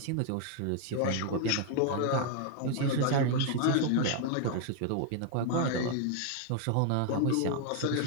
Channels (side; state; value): both; different; correlation 0.00